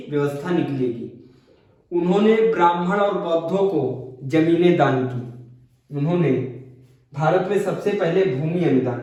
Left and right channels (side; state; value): both; identical; correlation 1.00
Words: व्यवस्था निकलेगी। उन्होंने ब्राह्मण और बौद्धों को जमीनें दान की। उन्होंने भारत में सबसे पहले भूमि